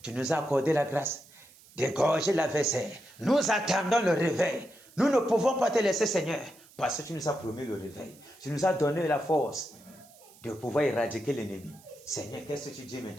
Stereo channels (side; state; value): right; noise; hiss, 25 dB below the sound